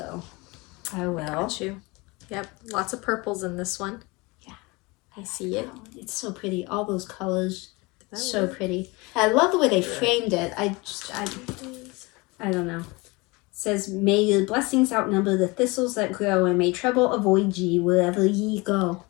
I will. Got you. Yep, lots of purples in this one. I see it. It's so pretty. All those colors, so pretty. I love the way they framed it. I don't know. It says, may your blessings outnumber the thistles that grow, and may trouble avoid ye wherever ye go.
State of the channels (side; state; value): right; quieter; 25.2 dB